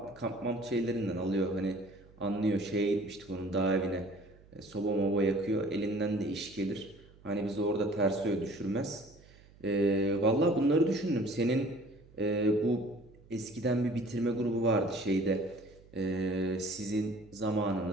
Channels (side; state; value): right; noise; hum, 25 dB below the sound